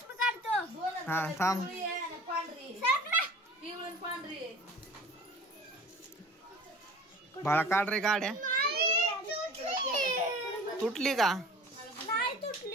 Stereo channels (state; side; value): normal; both; correlation 0.43